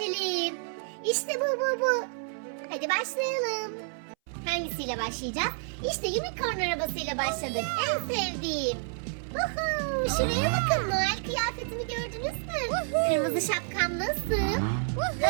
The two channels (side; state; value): left; silent; 58 dB below the other